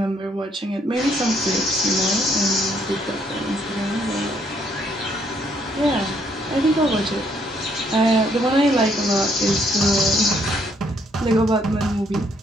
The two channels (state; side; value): normal; both; correlation 0.69